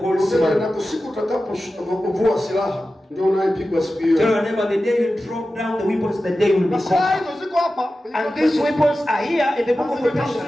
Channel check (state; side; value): normal; both; correlation 0.94